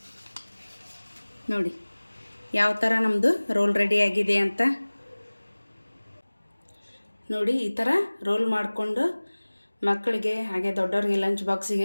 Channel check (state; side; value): inverted; both; correlation -1.00